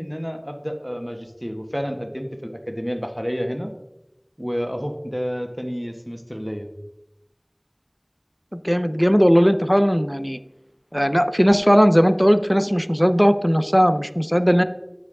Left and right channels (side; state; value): both; identical; correlation 1.00